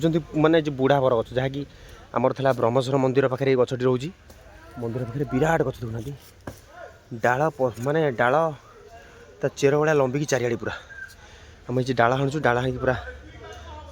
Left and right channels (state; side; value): identical; both; correlation 1.00